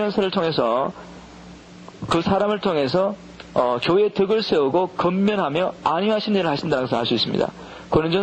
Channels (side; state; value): both; identical; correlation 1.00